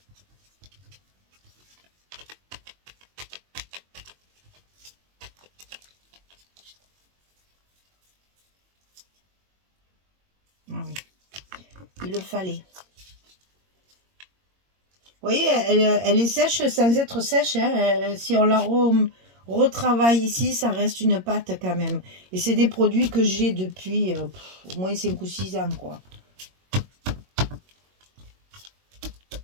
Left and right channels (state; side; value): late; left; 22 ms